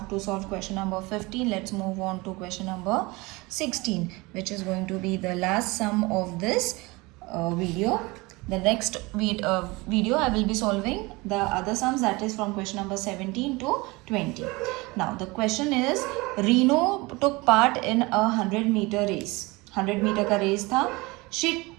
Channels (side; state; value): left; quieter; 23.7 dB